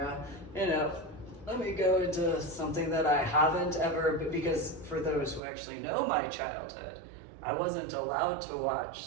you know. Let me go into something that I haven't ever, because for those who actually know my childhood, I wasn't allowed to watch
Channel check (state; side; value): drops out; left; at 5.4 s